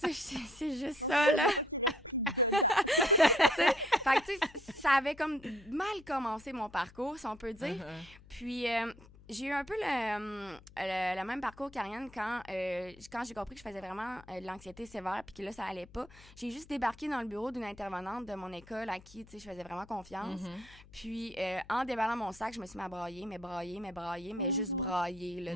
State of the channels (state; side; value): noise; left; hum, 22 dB below the sound